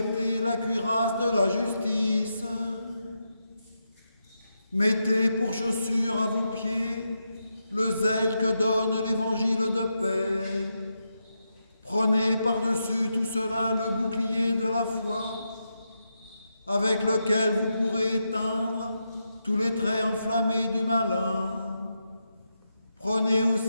la cuirasse de la justice, mettez pour chaussure à vos pieds le zèle que donne l'évangile de paix. Prenez par-dessus tout cela le bouclier de la foi, avec lequel vous pourrez éteindre tous les traits enflammés du malin. Prenez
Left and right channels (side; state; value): both; inverted; correlation -0.85